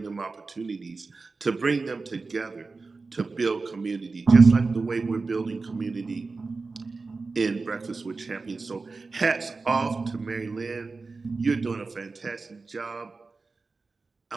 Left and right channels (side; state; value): left; quieter; 4.0 dB